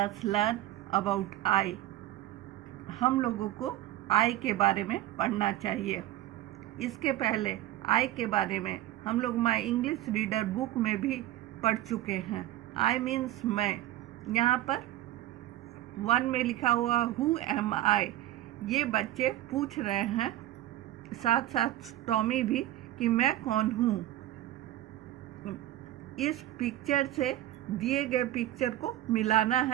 learn about I. हम लोगों को I के बारे में पढ़ना चाहिए. इसके पहले I के बारे में हम लोग माई इंग्लिश रीडर बुक में भी पढ़ चुके हैं. I मीन्स मैं. यहाँ पर 1 में लिखा हुआ Who am I. ये बच्चे पूछ रहे हैं, साथ साथ टॉमी भी, कि मैं कौन हूँ. इस पिक्चर से दिए गए पिक्चर को मिलाना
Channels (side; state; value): left; quieter; 14.7 dB